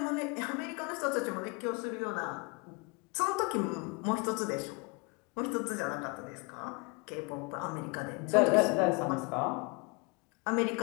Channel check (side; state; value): right; quieter; 30.1 dB